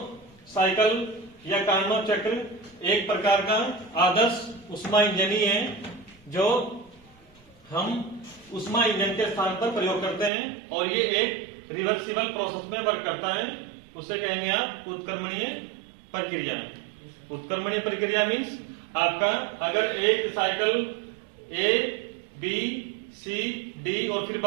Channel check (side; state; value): left; drops out; at 10.3 s